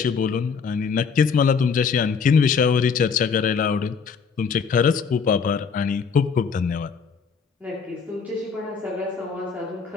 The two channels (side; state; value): right; quieter; 5.9 dB